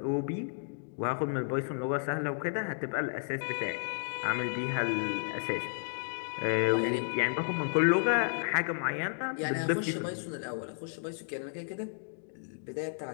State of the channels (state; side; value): silent; right; digital silence